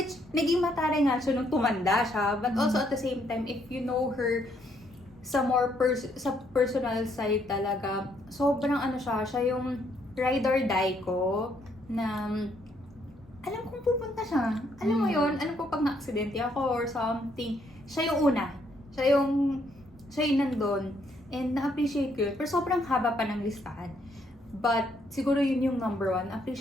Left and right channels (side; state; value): both; normal; correlation 0.71